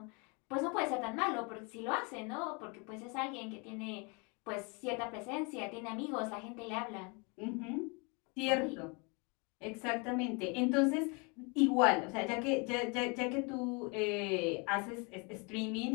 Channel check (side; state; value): right; quieter; 31.5 dB